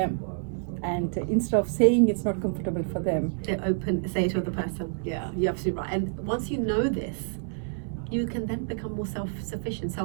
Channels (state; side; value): silent; left; digital silence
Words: And instead of saying it's not comfortable for them, they say it to the person. Yeah, you're absolutely right. And once you know this, you can then become more self-sufficient,